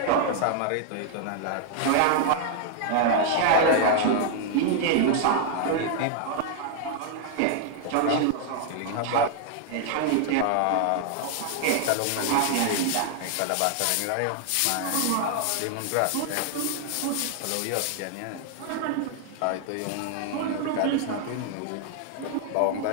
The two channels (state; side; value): different; both; correlation 0.00